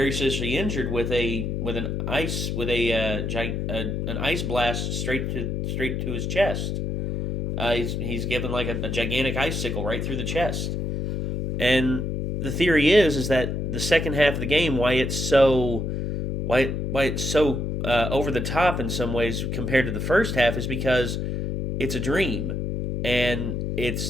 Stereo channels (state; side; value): noise; left; hum, 2 dB below the sound